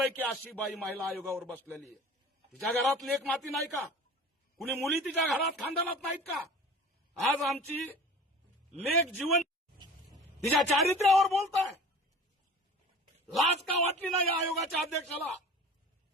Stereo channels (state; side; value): normal; both; correlation 0.41